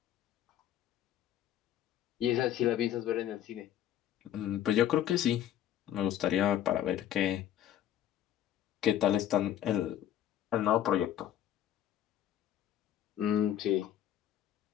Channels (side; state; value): right; quieter; 11.2 dB